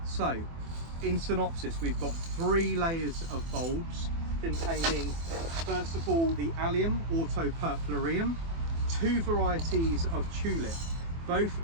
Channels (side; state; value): left; late; 24 ms